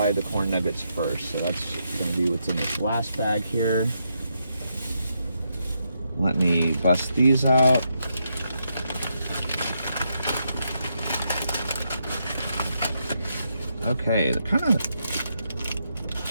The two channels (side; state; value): both; inverted; correlation -0.80